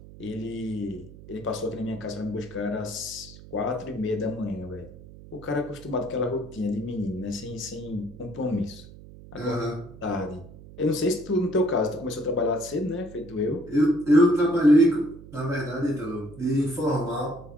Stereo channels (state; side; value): noise; right; hum, 18 dB below the sound